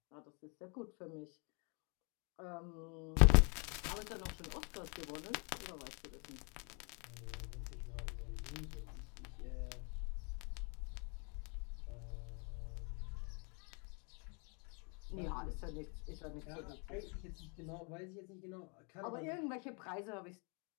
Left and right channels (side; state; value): right; quieter; 35.3 dB